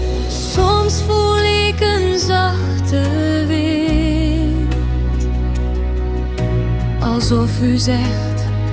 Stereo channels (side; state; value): both; identical; correlation 1.00